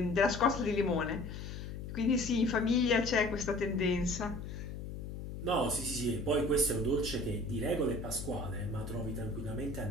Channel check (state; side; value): noise; left; hum, 8 dB below the sound